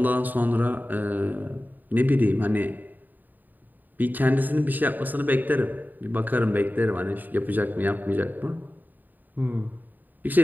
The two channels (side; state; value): left; late; 0.088 ms